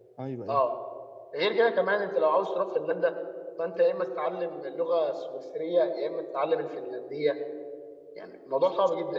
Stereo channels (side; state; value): both; identical; correlation 1.00